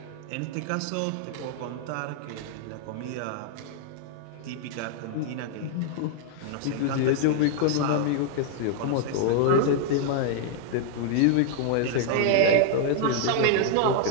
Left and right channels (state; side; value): different; both; correlation 0.00